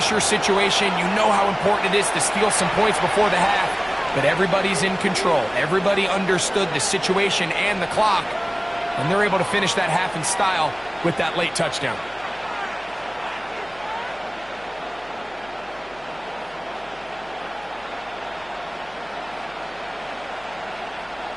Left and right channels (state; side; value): noise; left; hum, 26 dB below the sound